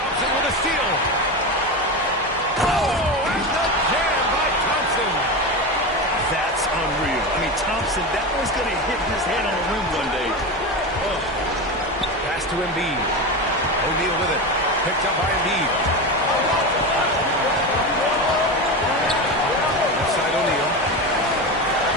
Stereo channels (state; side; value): normal; both; correlation 0.21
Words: with a steal. Oh, and the jam by Thompson. That's unreal. I mean, Thompson, that one's going to hit his head on the rim one day. Oh. Pass to Embiid. O'Neal with it. Picked up by Embiid. Outside O'Neal.